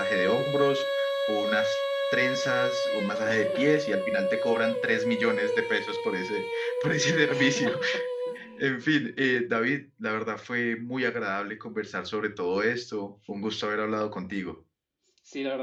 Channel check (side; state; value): both; identical; correlation 1.00